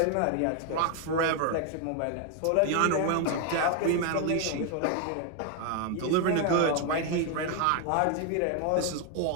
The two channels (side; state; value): both; different; correlation 0.01